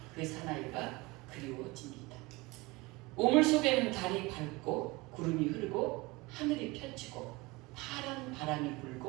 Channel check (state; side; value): quieter; left; 23.2 dB